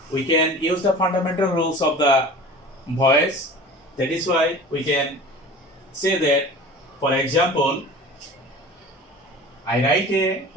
we can use the fundamental rules of the voice. That is why we can say that, for example, I write a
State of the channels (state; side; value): normal; both; correlation 0.39